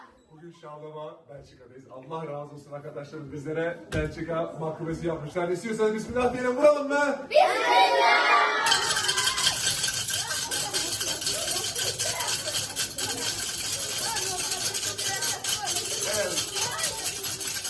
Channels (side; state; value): both; identical; correlation 1.00